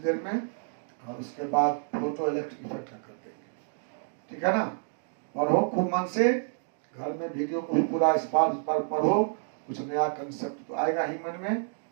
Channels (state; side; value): silent; left; 58 dB below the other